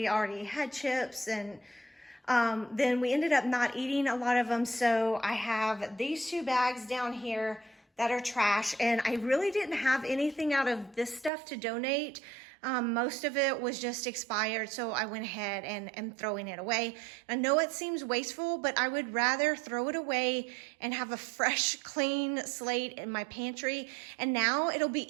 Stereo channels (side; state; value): left; drops out; at 11.3 s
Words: already had chips, and then we ended up not eating a lot of them. So I have these 2 bags down here that are trash, and I really didn't have anything out of this stuff to donate. Most of it was just expired, so I went ahead and am throwing it away. I know it seems wasteful, but I would rather throw it away and have a fresh, clean slate in my pantry. And now it'll